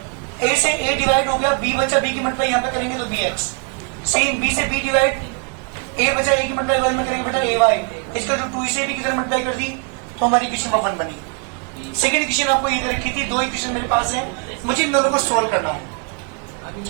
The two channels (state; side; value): quieter; left; 35.4 dB